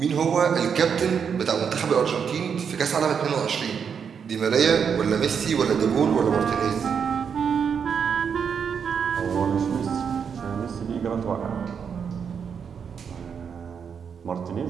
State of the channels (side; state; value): left; quieter; 6.9 dB